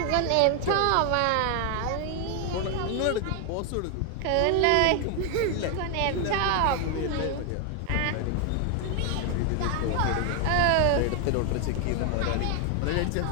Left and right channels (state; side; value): different; both; correlation 0.00